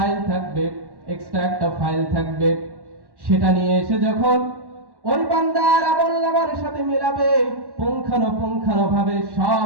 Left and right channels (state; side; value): late; left; 1.1 ms